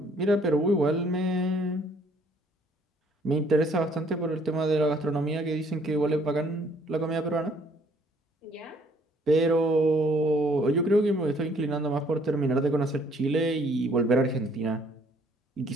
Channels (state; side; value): normal; both; correlation 0.62